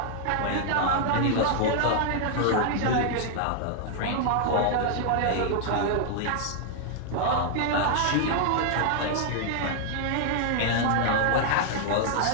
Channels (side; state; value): both; different; correlation -0.01